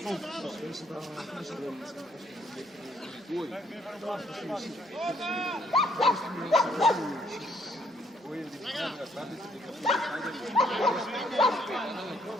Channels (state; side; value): normal; both; correlation 0.67